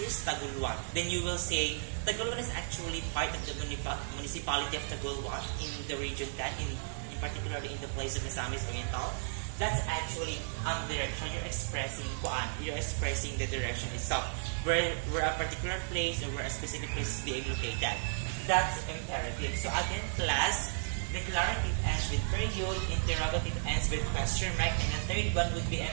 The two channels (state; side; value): silent; left; digital silence